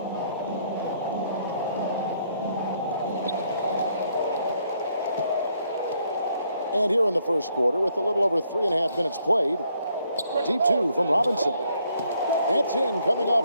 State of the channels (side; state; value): both; inverted; correlation -0.71